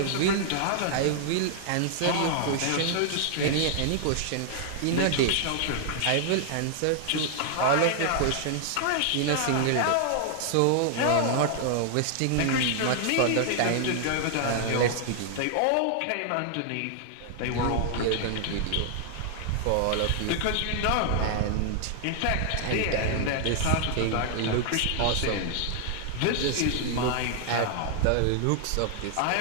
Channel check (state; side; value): different; both; correlation 0.00